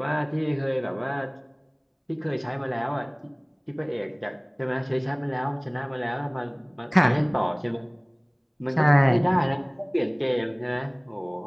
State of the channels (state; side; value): identical; both; correlation 1.00